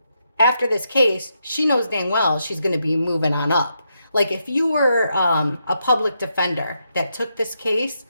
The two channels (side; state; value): both; inverted; correlation -0.81